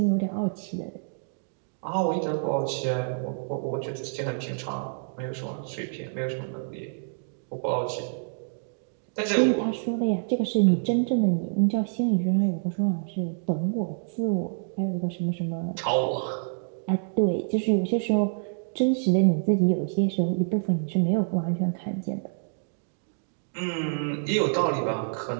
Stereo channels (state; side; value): silent; left; digital silence